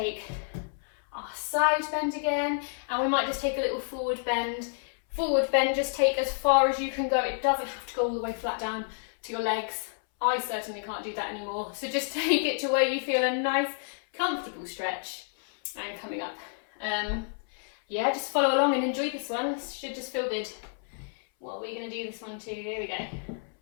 our side bend again, and we might just take a little forward bend. Forward bend, just take as far as you can go. It doesn't have to go all the way flat down to your legs. I certainly can't do that anymore. So just take it to where you feel a nice, comfortable stretch. And coming up. Yeah, just follow along and enjoy this one. This should just feel good. What are we going to do this one too? Here we go.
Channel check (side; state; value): right; silent; 58 dB below the other